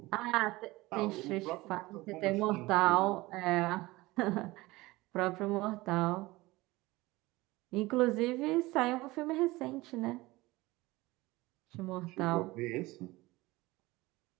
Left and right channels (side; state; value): left; quieter; 20.3 dB